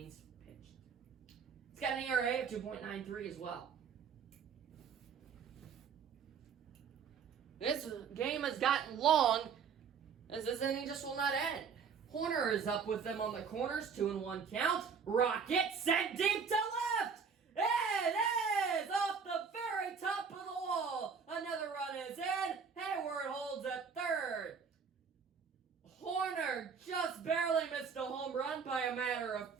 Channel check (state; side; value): quieter; left; 6.1 dB